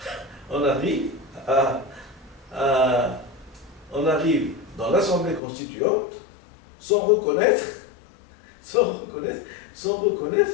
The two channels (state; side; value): drops out; right; at 5.4 s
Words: dans l'Assemblée constituante sans reconnaître